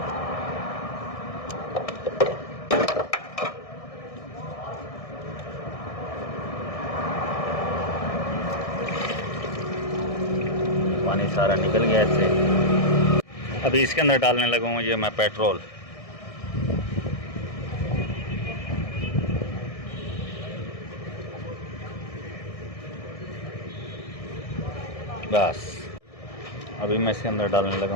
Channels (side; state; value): right; late; 1.6 ms